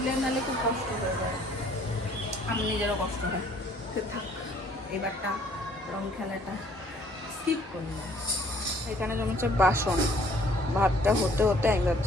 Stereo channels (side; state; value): both; normal; correlation 0.59